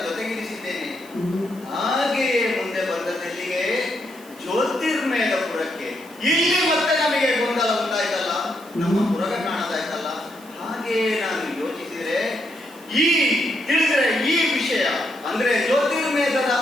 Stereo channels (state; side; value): noise; right; hiss, 23 dB below the sound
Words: ಜೊತೆಗಿರಿಸಿದ್ದೇನೆ. ಹಾಗೆಯೇ ಮುಂದೆ ಬಂದದೆಲ್ಲಿಗೆ ಜ್ಯೋತಿರ್ಮೇಧಪುರಕ್ಕೆ. ಇಲ್ಲಿ ಮತ್ತೆ ನಮಗೆ ಗೊಂದಲ ಉಂಟಾಯ್ತಲ್ಲ, ನಮ್ಮ ಪುರಗ ಕಾಣದಾಯ್ತಲ್ಲ. ಹಾಗೆ ನಾನು ಯೋಚಿಸಿದ್ರೆ ತಿಳಿದ್ರೆ ಈ ವಿಷಯ ಅಂದ್ರೆ ಜ್ಯೋತಿರ್ಮೇಧದ